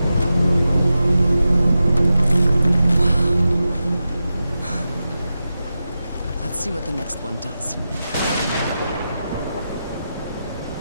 Let's see what the next one does.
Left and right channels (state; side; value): inverted; both; correlation -0.91